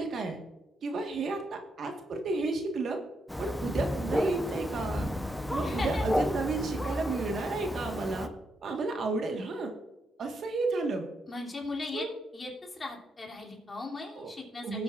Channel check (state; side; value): normal; both; correlation 0.80